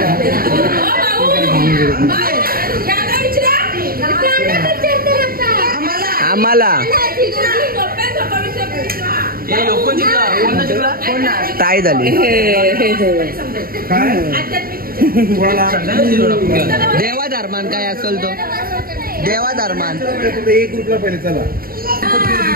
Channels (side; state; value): left; late; 0.43 ms